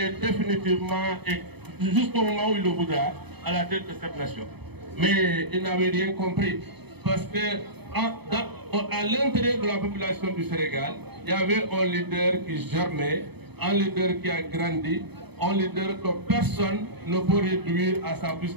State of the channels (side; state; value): left; late; 0.98 ms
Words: définitivement et jusqu'au moment où il le voudra à la tête de cette nation. Mais il n'avait rien compris parce que à l'intérieur de la population du Sénégal, il y avait un leader qui germait, un leader qui a grandi, un leader que personne ne peut réduire à sa plus